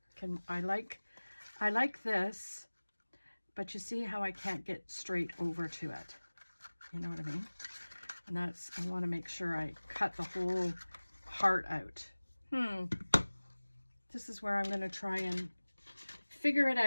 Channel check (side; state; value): both; inverted; correlation -1.00